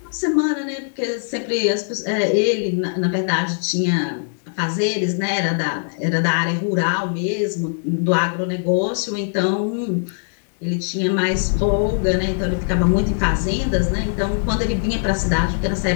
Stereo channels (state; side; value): silent; right; digital silence